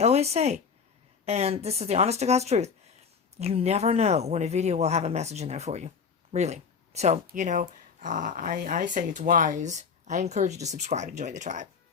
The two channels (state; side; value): quieter; right; 6.0 dB